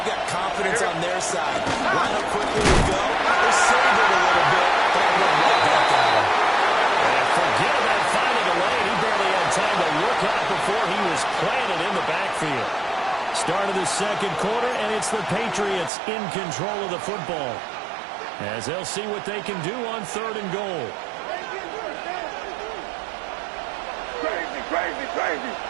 got confidence on their side. Line up quickly and go. They're saving it a little bit, but I went right back at them. And forget that final delay. He barely had time to look out before he was planted in the backfield. Start of the second quarter, and it's the Patriots in control of the football, as they'll see what they can do on third and goal. Crazy, crazy, crazy.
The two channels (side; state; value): left; drops out; at 15.9 s